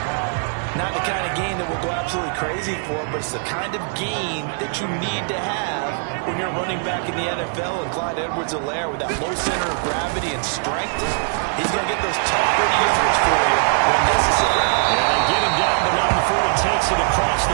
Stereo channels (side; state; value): left; silent; 61 dB below the other